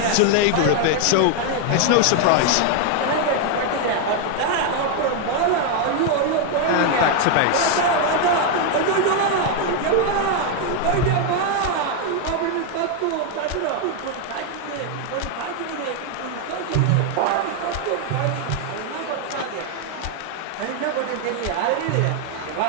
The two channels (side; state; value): both; different; correlation 0.00